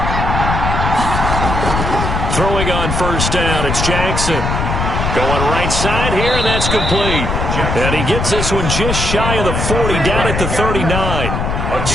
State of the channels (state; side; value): noise; left; rumble, 1 dB below the sound